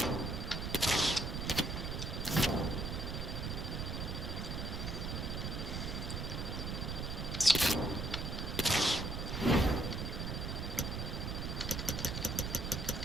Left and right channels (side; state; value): right; noise; rumble, 3 dB below the sound